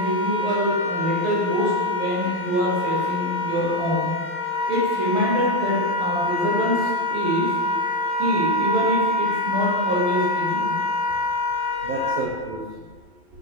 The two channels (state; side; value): late; left; 12 ms